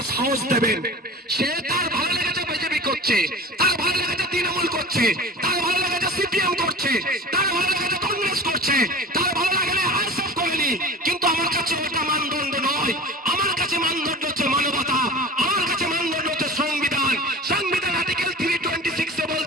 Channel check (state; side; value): normal; both; correlation 0.36